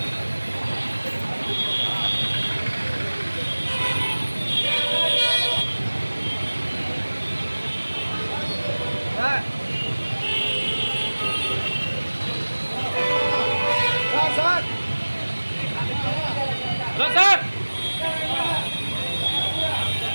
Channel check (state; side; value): inverted; both; correlation -1.00